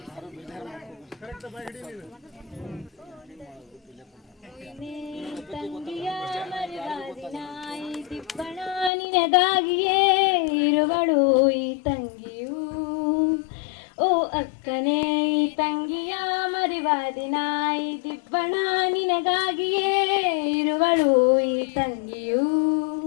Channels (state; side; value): drops out; right; at 8.9 s